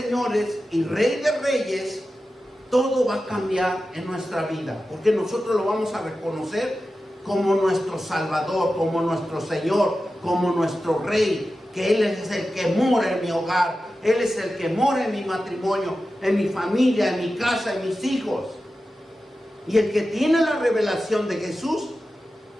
y Rey de reyes, todo va a cambiar en nuestra vida, porque nosotros lo vamos a reconocer como nuestro Salvador, como nuestro Señor, como nuestro Rey, que Él es el que mora en mi hogar, Él es el que mora en mi matrimonio, en mi familia, en mi casa, en mis hijos. Y el que tiene la revelación de Jesús,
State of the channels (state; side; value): normal; both; correlation 0.93